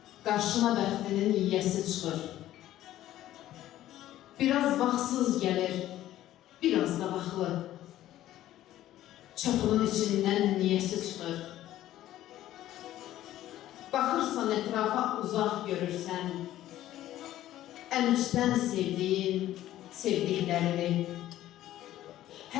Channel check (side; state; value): right; quieter; 13.6 dB